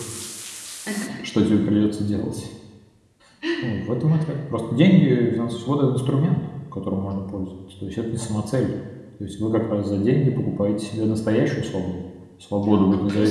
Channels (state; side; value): identical; both; correlation 1.00